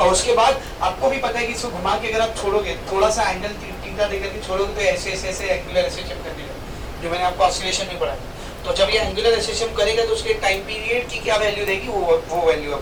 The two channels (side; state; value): both; identical; correlation 1.00